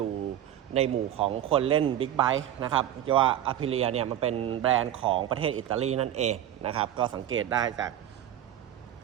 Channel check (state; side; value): quieter; left; 11.4 dB